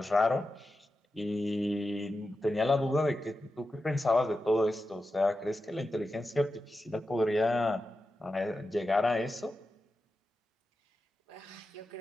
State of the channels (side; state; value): both; normal; correlation 0.91